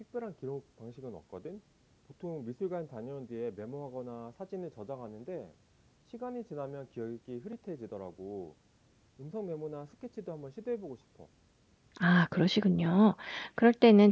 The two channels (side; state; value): both; identical; correlation 1.00